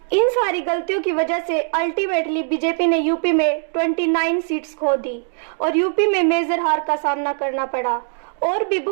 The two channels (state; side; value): silent; left; 65 dB below the other